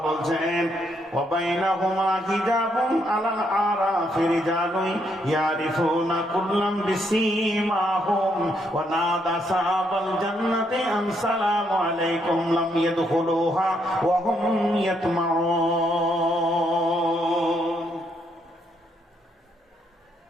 বলছেন ওয়াবাইনাহুমা হিজাবুন আলাল আরাফি রিজালুন ইয়ারিফুনা কুল্লাম বিসীমাহুম ওয়া নাদা সাহাবাল জান্নাতি আন সালামু আলাইকুম লাম ইয়াদখুলুহা ওয়া হুম ইয়াতমাউন।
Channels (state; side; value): normal; both; correlation 0.74